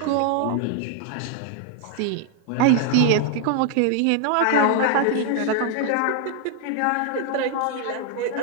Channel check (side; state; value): both; different; correlation 0.00